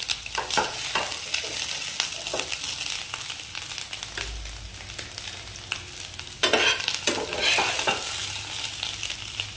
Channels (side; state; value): both; identical; correlation 1.00